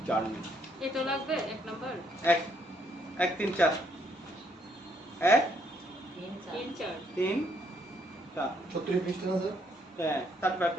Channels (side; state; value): both; normal; correlation 0.70